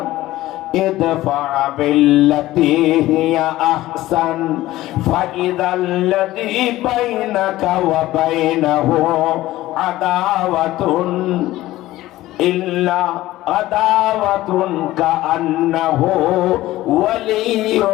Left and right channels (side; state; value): right; quieter; 16.3 dB